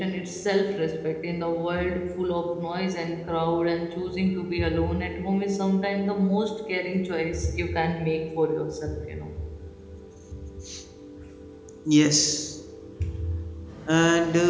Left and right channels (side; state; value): both; identical; correlation 1.00